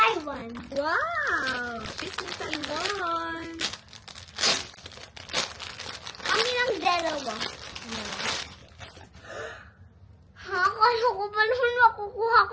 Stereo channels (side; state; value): both; identical; correlation 1.00